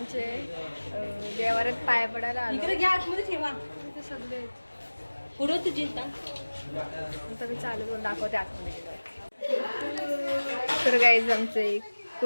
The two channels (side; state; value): both; inverted; correlation -1.00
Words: देवाऱ्यात पाय पडायला आलो. सगळे पुढं तुझी आता मी चालू करून दाखवते आतमध्ये गेलं. तर गाईज आमचे